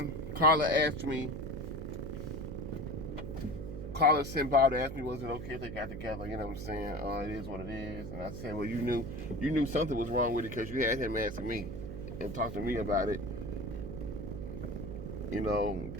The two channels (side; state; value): right; noise; hum, 7 dB below the sound